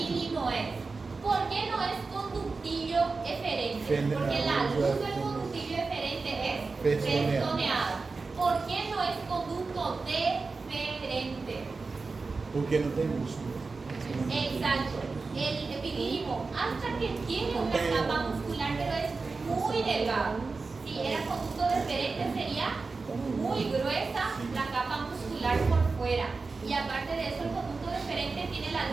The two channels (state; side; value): quieter; left; 4.1 dB